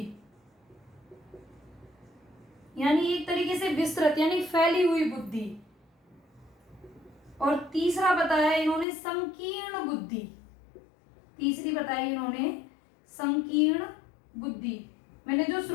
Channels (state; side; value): drops out; right; at 8.8 s